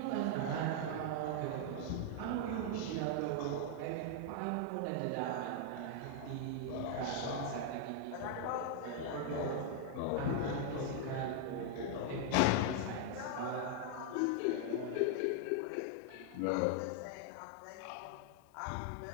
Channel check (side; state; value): both; different; correlation 0.00